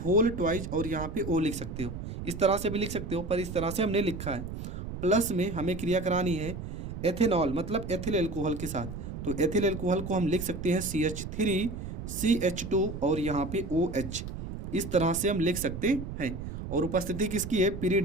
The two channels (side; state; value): right; noise; rumble, 8 dB below the sound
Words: ट्वाइस और यहाँ पे O लिख सकते हो, इस तरह से भी लिख सकते हो, पर इस तरह से हमने लिखा है। प्लस में हमें क्रिया करानी है एथेनॉल मतलब एथिल एल्कोहल के साथ, तो एथिल एल्कोहल को हम लिख सकते हैं CH3CH2 और यहाँ पे OH, इस तरह से हम लिख सकते हैं। और उपस्थिति किसकी है,